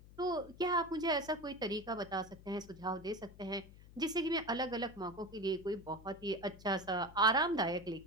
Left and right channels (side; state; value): left; noise; hum, 19 dB below the sound